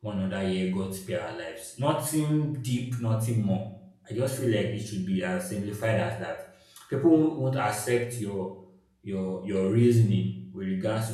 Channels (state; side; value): identical; both; correlation 1.00